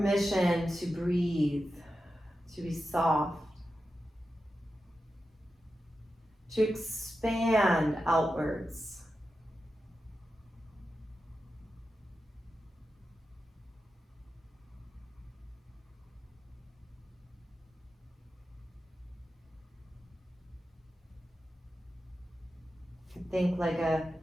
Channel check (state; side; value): normal; both; correlation 0.91